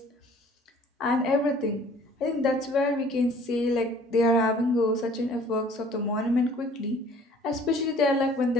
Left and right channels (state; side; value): normal; both; correlation 0.54